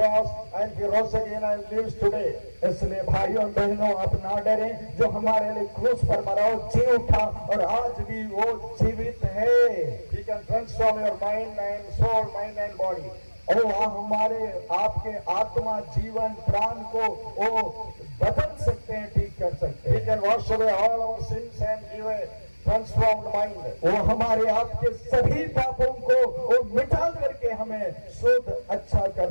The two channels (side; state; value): both; inverted; correlation -1.00